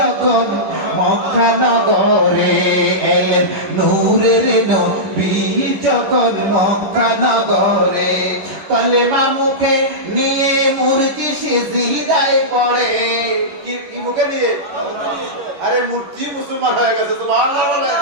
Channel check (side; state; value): left; late; 11 ms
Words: মক্কা নগরে, এলেন নূরের নবী যখন মক্কা নগরে, কলেমা মুখে নিয়ে মূর্তি সিজদায় পড়ে। কি মুখে নিয়ে? আরে মূর্তি মুসলমান হয়ে গেছে, সুবহানাল্লাহ বলে।